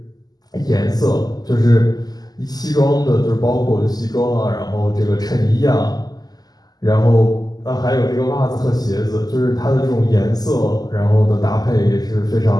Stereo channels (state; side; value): late; right; 0.19 ms